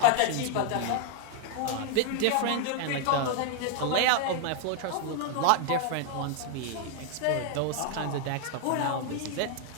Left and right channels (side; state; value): both; different; correlation 0.00